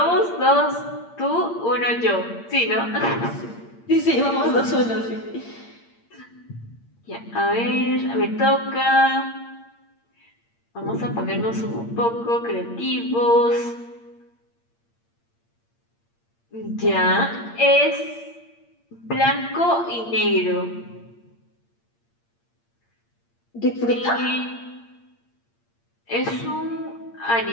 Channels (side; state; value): right; late; 8.7 ms